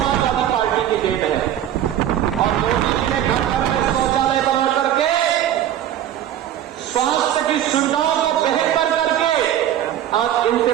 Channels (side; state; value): left; quieter; 11.3 dB